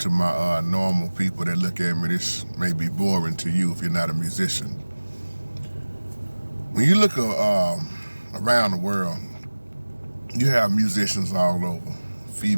normal people that look at me, this may be boring to you if you're not a musician. When you look around the world, you have musicians all over,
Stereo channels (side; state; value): both; inverted; correlation -1.00